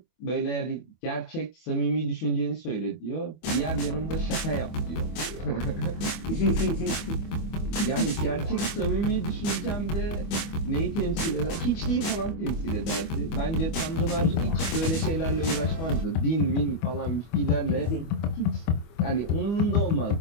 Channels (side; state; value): right; late; 25 ms